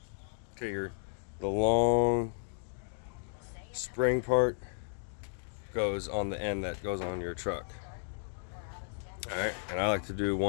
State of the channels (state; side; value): silent; right; digital silence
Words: Okay, the long spring part goes on the end that goes on your truck. Alright, and I like to do